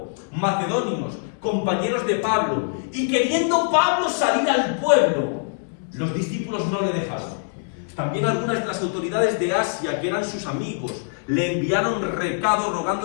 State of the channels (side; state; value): right; silent; digital silence